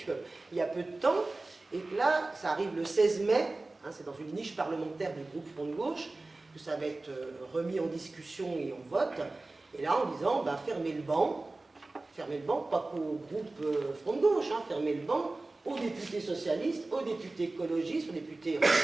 y a peu de temps, et que là, ça arrive le 16 mai, hein, c'est dans une niche parlementaire du groupe Front de Gauche, que ça va être remis en discussion et en vote, et là en disant, ben, fermez le banc, pas qu'au groupe Front de Gauche, hein, fermez le banc aux députés socialistes, aux députés écologistes, aux députés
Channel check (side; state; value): left; quieter; 3.1 dB